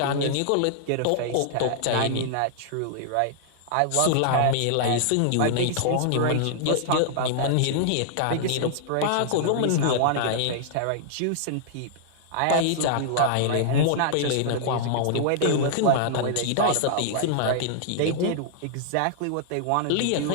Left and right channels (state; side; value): different; both; correlation -0.01